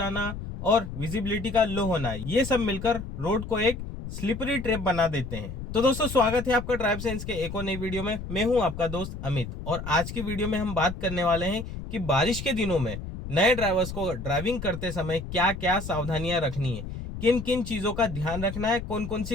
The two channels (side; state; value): left; noise; rumble, 8 dB below the sound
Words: और विजिबिलिटी का लो होना, ये सब मिलकर रोड को एक स्लिपरी ट्रैप बना देते हैं। तो दोस्तों, स्वागत है आपका ड्राइव सेंस के एक और नई वीडियो में। मैं हूं आपका दोस्त अमित, और आज की वीडियो में हम बात करने वाले हैं कि बारिश के दिनों में नए ड्राइवर्स को ड्राइविंग करते समय क्या क्या सावधानियां रखनी है, किन किन चीजों का ध्यान रखना है, कौन कौन